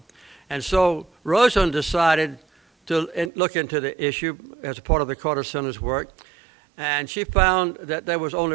And so Rosen decided to look into the issue as a part of the Carter Center's work, and she found that there was only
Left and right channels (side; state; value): left; drops out; at 3.3 s